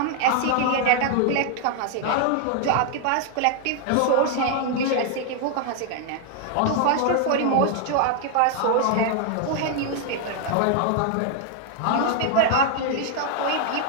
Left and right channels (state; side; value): different; both; correlation 0.00